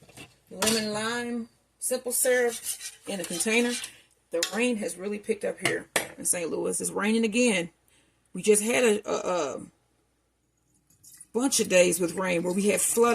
lemon lime simple syrup in a container. The rain has really picked up here in St. Louis. It's raining again. We just had a bunch of days with rain where we had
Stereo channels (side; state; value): both; identical; correlation 1.00